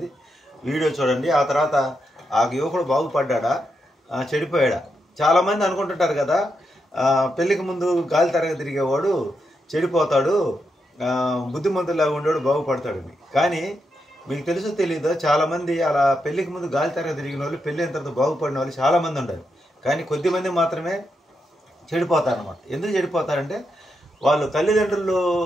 వీడియో చూడండి. ఆ తర్వాత ఆ యువకుడు బాగుపడ్డా చెడిపోయాడా? చాలామంది అనుకుంటుంటారు కదా, పెళ్ళికి ముందు గాలి తరగ తిరిగేవాడు చెడిపోతాడు, బుద్ధిమంతులాగా ఉండేవాడు బాగుపడతాడని. కానీ మీకు తెలుసో తెలీదో, చాలామంది అలా పెళ్ళికి ముందు గాలి తరగ తిరిగిన వాళ్ళు పెళ్ళి అయిన తర్వాత బాగుపడిన వాళ్ళు చాలామంది ఉంటారు. కానీ కొద్దిమంది మాత్రమే చెడిపోతారు అన్నమాట. ఎందుకు చెడిపోతారంటే వాళ్ళు తల్లిదండ్రులు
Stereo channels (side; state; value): both; normal; correlation 0.84